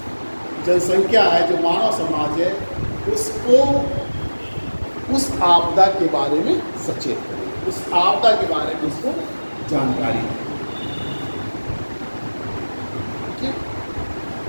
जनसंख्या है, जो मानव समाज है, उसको उस आपदा के बारे में सचेत करें, उस आपदा के बारे में उसको जानकारी दें।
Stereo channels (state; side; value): inverted; both; correlation -1.00